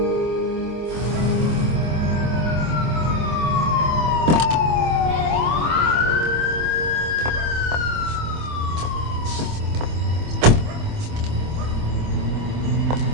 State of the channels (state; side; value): late; left; 25 ms